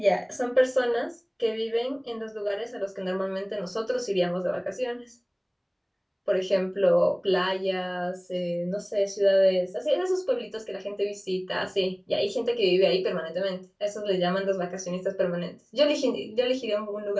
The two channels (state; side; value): identical; both; correlation 1.00